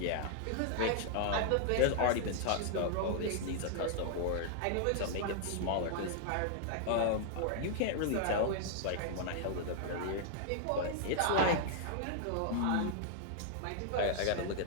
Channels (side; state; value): both; different; correlation -0.01